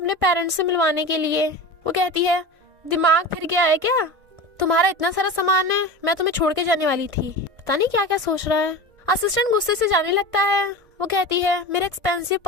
पेरेंट्स से मिलवाने के लिए। वो कहती है दिमाग फिर गया है क्या? तुम्हारा इतना सारा सामान है, मैं तुम्हें छोड़ के जाने वाली थी। पता नहीं क्या क्या सोच रहा है। असिस्टेंट गुस्से से जाने लगता है। वो कहती है मेरा एक्सपेंसिव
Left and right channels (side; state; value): left; late; 1.5 ms